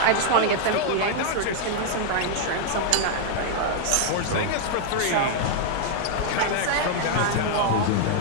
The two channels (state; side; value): different; both; correlation 0.00